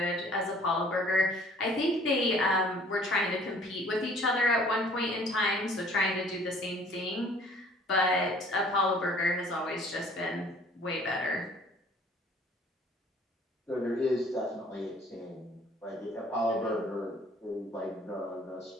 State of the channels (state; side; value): normal; both; correlation 0.54